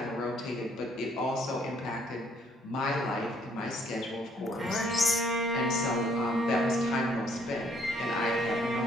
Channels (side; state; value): both; normal; correlation 0.65